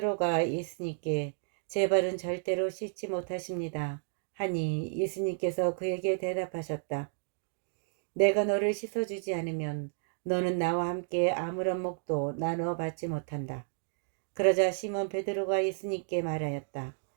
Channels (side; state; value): left; silent; digital silence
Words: 예수님께 제 발은 절대로 씻지 못하십니다 하니 예수님께서 그에게 대답하셨다. 내가 너를 씻어주지 않으면 너는 나와 함께 아무런 몫도 나누어 받지 못한다. 그러자 시몬 베드로가 예수님께 말하였다.